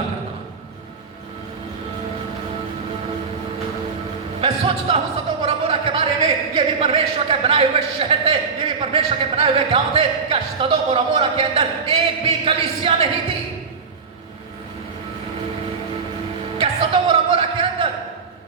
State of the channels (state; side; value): quieter; left; 5.2 dB